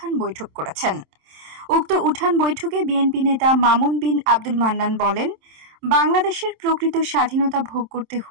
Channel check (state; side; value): late; left; 27 ms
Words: বৈঠক করেছেন। উক্ত উঠান বৈঠকে বিএনপি নেতা মামুন বিন আব্দুল মান্নান বলেন, বাংলাদেশের প্রকৃত স্বাধীনতা ভোগ করতে